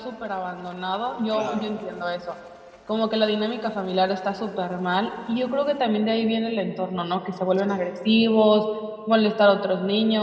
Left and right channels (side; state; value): both; identical; correlation 1.00